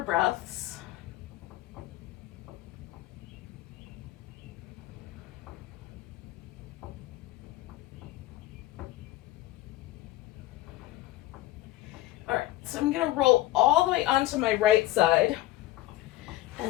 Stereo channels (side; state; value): right; quieter; 15.9 dB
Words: breaths. So I'm going to roll all the way onto my right side,